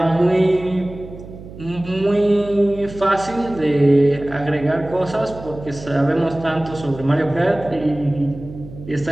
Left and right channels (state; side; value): noise; right; hum, 15 dB below the sound